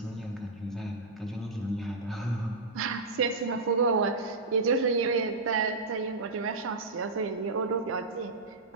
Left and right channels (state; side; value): quieter; left; 3.6 dB